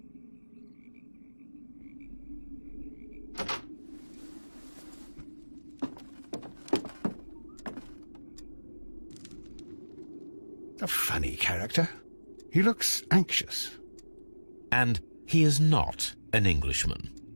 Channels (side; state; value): both; inverted; correlation -1.00